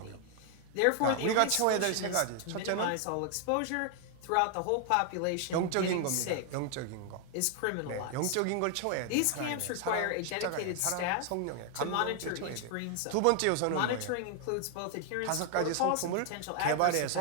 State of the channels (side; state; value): both; different; correlation 0.00